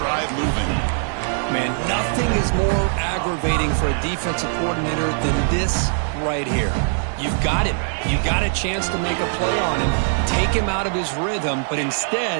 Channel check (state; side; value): silent; left; 65 dB below the other